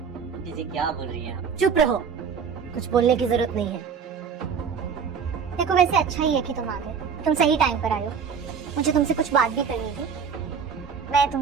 क्या बोल रही है आप? चुप रहो, कुछ बोलने की जरूरत नहीं है। देखो, वैसे अच्छा ही है कि तुम आ गए, तुम सही टाइम पर आए हो। मुझे तुमसे कुछ बात भी करनी थी। मैं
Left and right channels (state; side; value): quieter; left; 6.5 dB